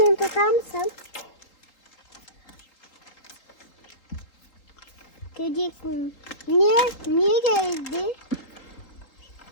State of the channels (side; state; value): right; late; 3.7 ms